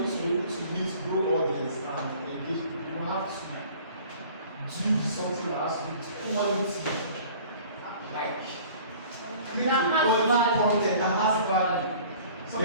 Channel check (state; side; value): inverted; both; correlation -0.48